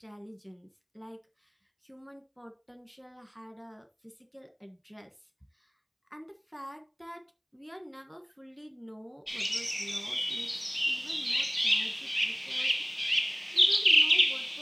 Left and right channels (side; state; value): both; identical; correlation 1.00